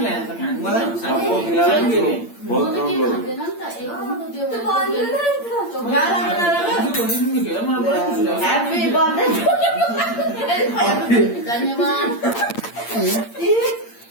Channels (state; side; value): late; right; 8.7 ms